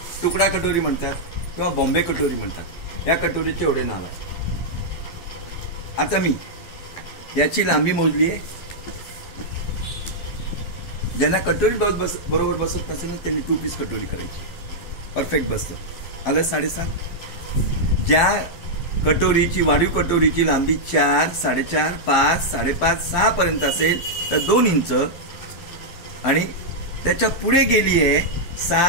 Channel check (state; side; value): late; right; 12 ms